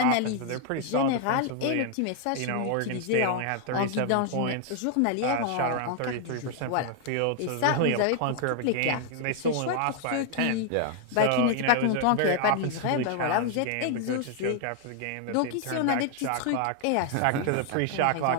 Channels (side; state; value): both; different; correlation 0.00